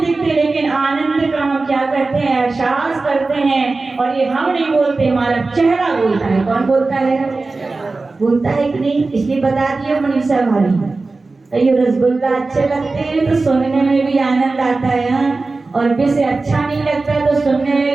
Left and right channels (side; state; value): left; quieter; 3.6 dB